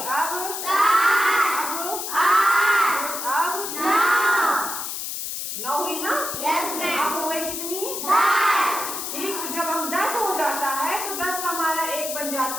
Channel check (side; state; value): left; noise; hiss, 5 dB below the sound